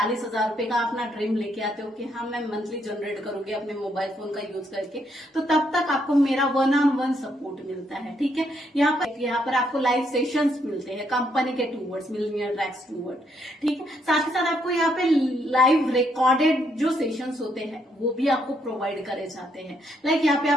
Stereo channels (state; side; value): normal; both; correlation 0.74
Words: हजार रुपए का अपना ड्रीम लेके आते हो कि हाँ मैं मंथली जनरेट करूंगी अपने मोबाइल फोन का यूज करके, तो तब तक आपको मेरा 1-on-1 सपोर्ट मिलता है। ठीक है, यहाँ पर आपको लाइव सेशंस मिलते हैं कंपनी के टूवर्ड्स, मिलियनियर ट्रैक्स टूवर्ड। ठीक है, साथ ही साथ आपको यहाँ पे लाइव रिकॉर्डेड जो सेशंस होते हैं वो भी आपको प्रोवाइड करे जाते हैं। लाइक यहाँ पे